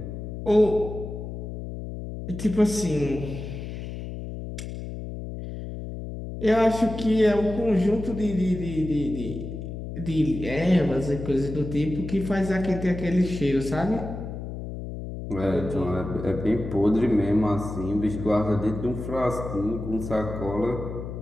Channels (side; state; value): left; noise; hum, 8 dB below the sound